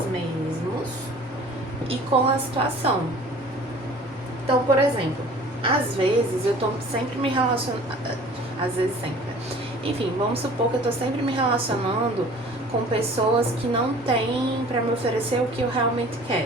mesmos e com a situação. Então, por exemplo, às vezes eu tô sempre me relacionando, às vezes sempre, enfim, vamos supor que eu tô sempre me relacionando com pessoas que não têm pra me oferecer o que eu realmente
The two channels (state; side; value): normal; both; correlation 0.47